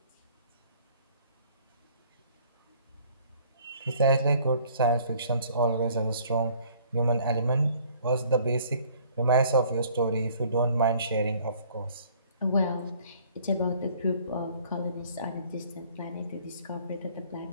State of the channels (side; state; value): both; inverted; correlation -0.56